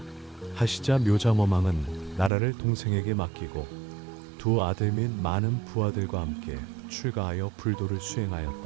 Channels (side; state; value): left; drops out; at 2.3 s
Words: 하시자 묘장어망은 나라를 동생에게 맡기고 두 아들 및 많은 부하들과 함께 출가하여 불도를